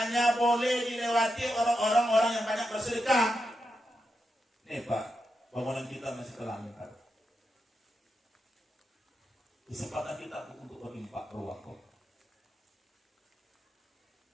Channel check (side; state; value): both; normal; correlation 0.86